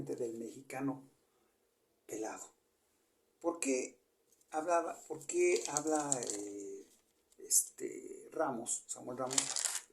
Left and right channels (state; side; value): identical; both; correlation 1.00